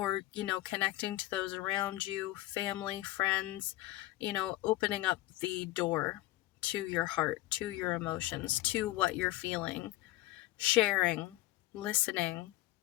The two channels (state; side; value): quieter; right; 17.0 dB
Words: connecting to those around you, family, friends, opening up the door to your heart, to your emotions, to what you're feeling, sharing, listening.